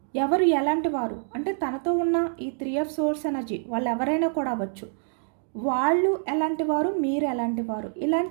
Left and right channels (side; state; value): left; silent; digital silence